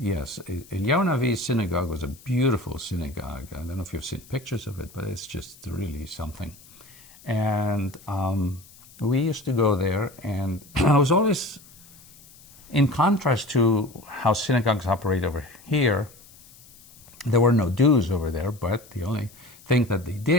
Eliyahu Navi's synagogue was a beautiful synagogue. I don't know if you've seen pictures of it, but it's just really something. And we used to go there, and I was always, in contrast to how synagogues operate over here, there were no dues over there, but the only thing that they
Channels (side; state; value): left; noise; hiss, 23 dB below the sound